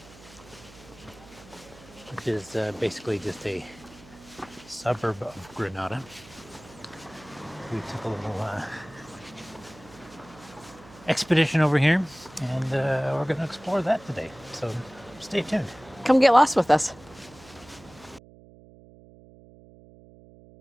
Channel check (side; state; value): right; noise; hum, 22 dB below the sound